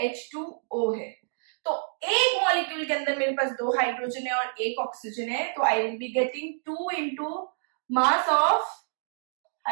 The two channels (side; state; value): left; silent; digital silence